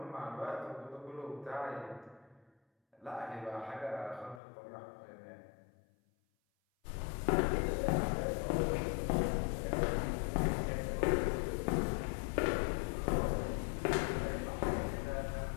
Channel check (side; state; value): right; drops out; at 4.4 s